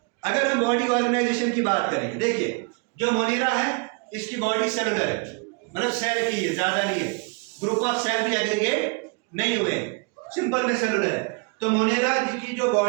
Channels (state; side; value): quieter; left; 33.2 dB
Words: अगर हम बॉडी ऑर्गेनाइजेशन की बात करेंगे, देखिए जो मोनेरा है इसकी बॉडी सेलुलर है, मतलब सेल की है, ज्यादा नहीं है, ग्रुप ऑफ सेल भी एग्रीगेट नहीं हुए, सिंपल में सेलुलर है। तो मोनेरा की जो